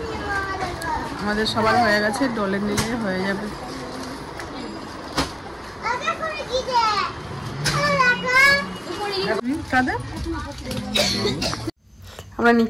আমাদের সবার হয়ে গেছে, ডলের নিলে হয়ে যাবে। আমরা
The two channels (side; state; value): both; identical; correlation 1.00